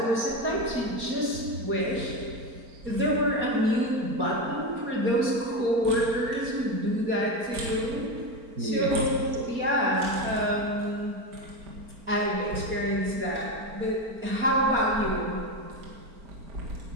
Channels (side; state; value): left; late; 4.4 ms